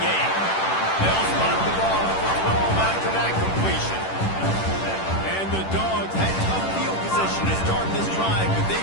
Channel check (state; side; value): late; right; 10 ms